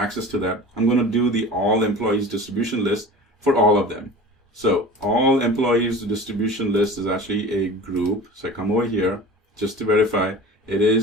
to that, I'm going to do the all employees distribution list for all of them. So all employees distribution list is actually a group. So I come over here just to verify it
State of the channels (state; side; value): normal; both; correlation 0.37